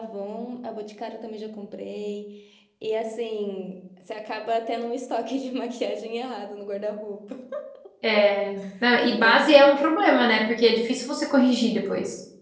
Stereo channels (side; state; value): both; identical; correlation 1.00